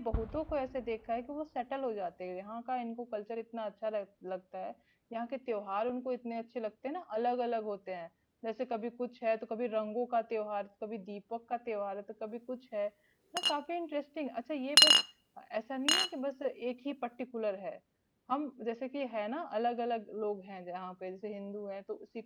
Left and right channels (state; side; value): identical; both; correlation 1.00